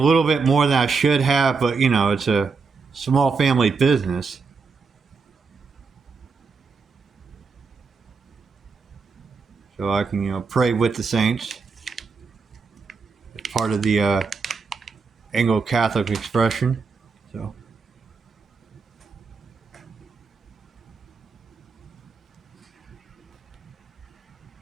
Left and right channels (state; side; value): quieter; left; 4.8 dB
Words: bit more than I should have, but it's a small family business. So I can pray with the saints. It's part of the Anglo Catholic expression. So